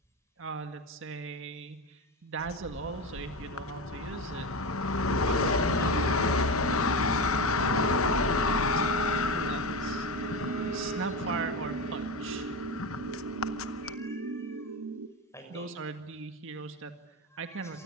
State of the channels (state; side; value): normal; both; correlation 0.20